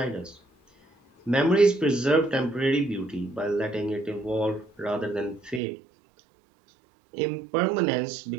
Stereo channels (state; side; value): drops out; left; at 5.6 s